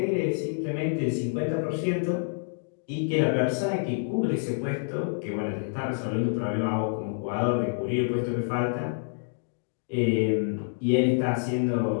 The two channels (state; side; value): silent; right; digital silence